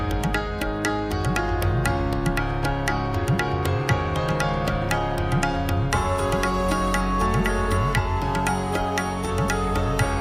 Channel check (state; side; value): identical; both; correlation 1.00